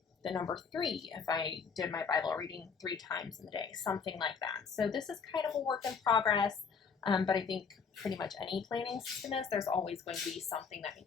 the number 3 if I did my Bible reading 3 times in the day, something like that. So this is kind of a work in progress, but I think pretty much any planning system is, there's always going to be something that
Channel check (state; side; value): quieter; right; 5.9 dB